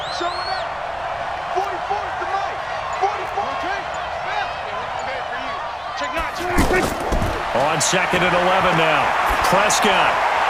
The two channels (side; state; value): both; identical; correlation 1.00